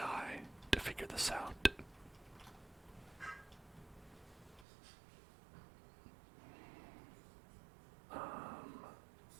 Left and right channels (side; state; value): left; drops out; at 4.7 s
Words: to figure this out.